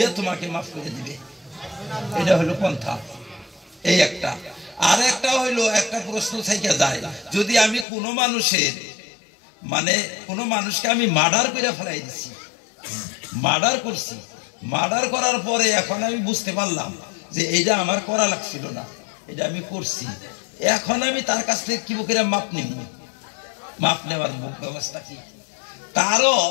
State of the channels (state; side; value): drops out; right; at 7.9 s